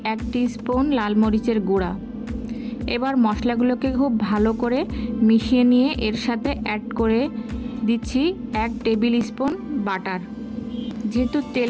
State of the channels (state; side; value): identical; both; correlation 1.00